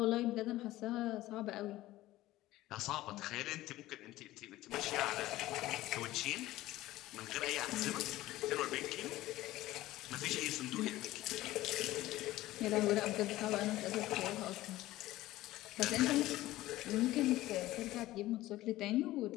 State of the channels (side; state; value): right; quieter; 16.5 dB